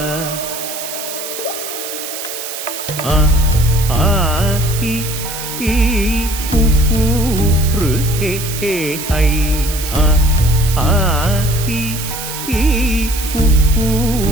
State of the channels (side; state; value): right; noise; hiss, 7 dB below the sound